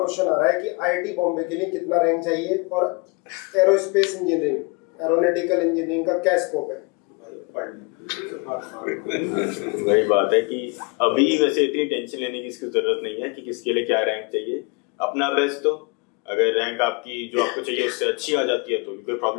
आ रहा है कि IIT बॉम्बे के लिए कितना रैंक चाहिए और एरोस्पेस इंजीनियरिंग, एरोनॉटिकल इंजीनियरिंग का क्या स्कोप है? वही बात है कि अभी वैसे इतनी टेंशन लेने की इसकी जरूरत नहीं है कि किसके लिए क्या रैंक चाहिए। अपना बेस्ट तो अगर रैंक आपकी जो आपको चाहिए उससे अच्छी आ जाती है तो कोई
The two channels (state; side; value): quieter; right; 30.1 dB